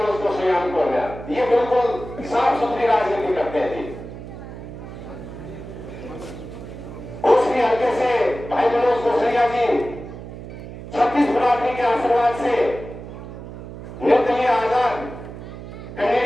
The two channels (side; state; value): right; noise; hum, 12 dB below the sound